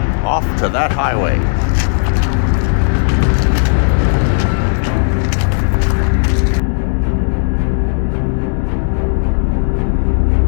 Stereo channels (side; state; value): right; silent; digital silence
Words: Off to that highway.